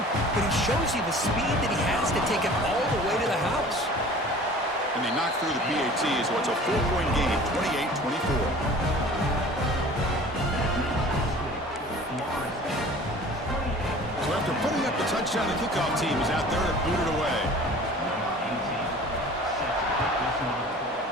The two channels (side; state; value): both; normal; correlation 0.45